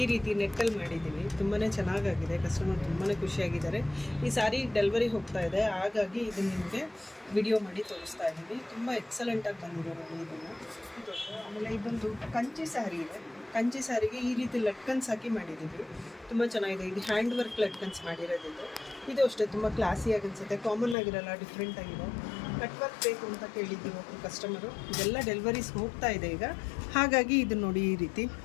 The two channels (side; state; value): right; drops out; at 21.0 s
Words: ಈ ರೀತಿ ನೆಟ್ಟಲ್ಲಿ ಮಾಡಿದ್ದೀನಿ. ತುಂಬಾ ಚೆನ್ನಾಗಾಗಿದೆ. ಕಸ್ಟಮರ್ ತುಂಬಾ ಖುಷಿಯಾಗಿದ್ದಾರೆ. ಈ ಸಾರಿ ಡೆಲಿವರಿ ಹೋಗ್ತಾ ಇದೆ, ಹಾಗಾಗಿ ಇದನ್ನು ನಿಮಗೆ ವಿಡಿಯೋ ಮಾಡಿ ತೋರಿಸ್ತಾ ಇದ್ದೀನಿ. ತುಂಬ ಎಕ್ಸಲೆಂಟಾಗಿ ಬಂದಿದೆ ನೋಡಿ ಇದನ್ನು. ಆಮೇಲೆ ಇದೊಂದು ಕಂಚಿ ಸ್ಯಾರಿ ಇದೆ. ಕಂಚಿ ಸ್ಯಾರಿಗೆ ಈ ರೀತಿ ಲಟ್ಕನ್ಸ್ ಹಾಕಿ ಮಾಡಿದ್ದೀವಿ. ತುಂಬ ಚೆನ್ನಾಗಿದೆ. ಇದು ಹ್ಯಾಂಡ್ ವರ್ಕ್ ಲಟ್ಕನ್ಸ್ ಮಾಡಿರೋದಿದ್ದು. ಇದು ಅಷ್ಟೇ ತುಂಬ ಕ್ಲಾಸಿಯಾಗಿ ಅನಿಸುತ್ತೆ. ಕಾಮನ್ ಆಗಿರಲ್ಲ, ಡಿಫ್ರೆಂಟ್ ಆಗಿದೆ. ಕಟ್ ವರ್ಕ್ ಬೇಕು ಅಂತ ಕೇಳಿದ್ದೀವಿ ಒಬ್ಬರು ಕಸ್ಟಮರು. ಇದೆಲ್ಲ ಡೆಲಿವರೀಸ್ ಹೋಗ್ತಾ ಇದೆ ಈಗ, ಹಾಗಾಗಿ ಇದು ನೋಡಿ ಈ ರೀತಿ